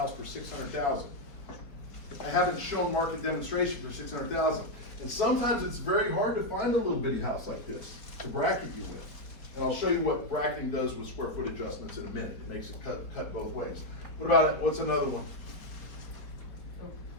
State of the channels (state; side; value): late; right; 4.5 ms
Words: for $600,000. I haven't shown market demonstration for $600,000. And sometimes it's very hard to find a little bitty house like this to bracket you with. And I'll show you what bracketing does with square foot adjustments in a minute. It makes it cut both ways. What about it? What's another one?